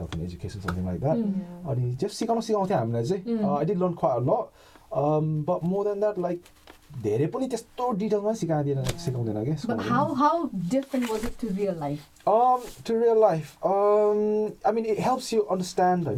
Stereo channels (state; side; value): identical; both; correlation 1.00